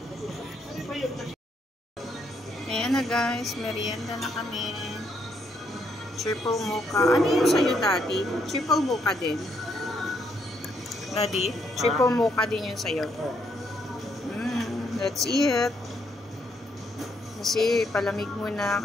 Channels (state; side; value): normal; both; correlation 0.74